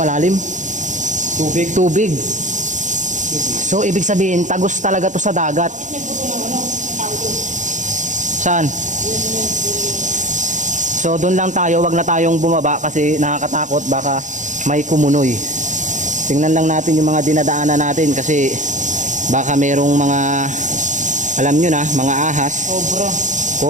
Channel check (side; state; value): left; late; 0.36 ms